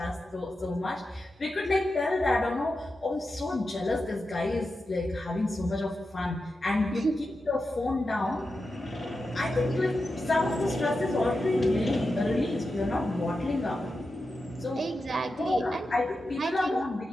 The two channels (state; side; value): normal; both; correlation 0.90